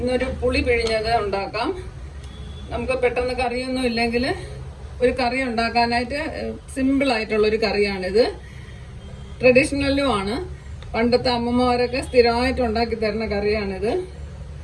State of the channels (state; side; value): identical; both; correlation 1.00